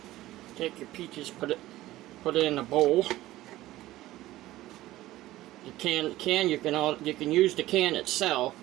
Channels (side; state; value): left; quieter; 16.2 dB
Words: Take your peaches, put it in a bowl. You can use the can itself